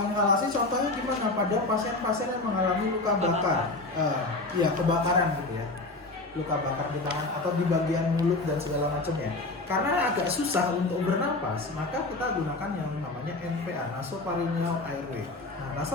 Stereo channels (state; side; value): quieter; right; 3.1 dB